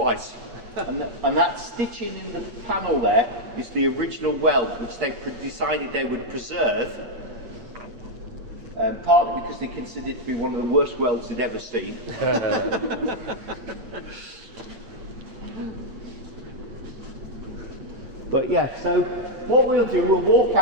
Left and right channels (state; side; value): late; left; 8.5 ms